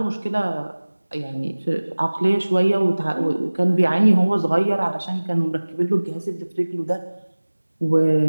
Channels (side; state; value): both; inverted; correlation -1.00